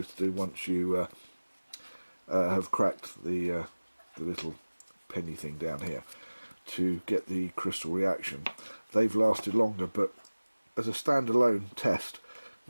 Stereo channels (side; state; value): both; inverted; correlation -1.00